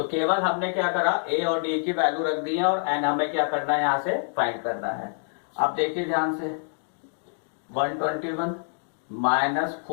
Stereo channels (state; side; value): silent; right; digital silence